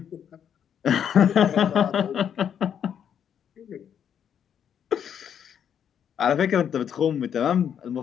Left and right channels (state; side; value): quieter; right; 8.6 dB